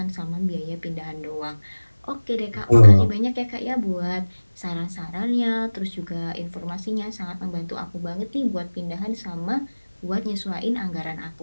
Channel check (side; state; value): both; inverted; correlation -1.00